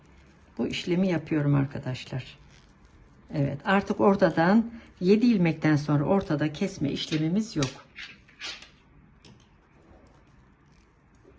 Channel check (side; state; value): both; identical; correlation 1.00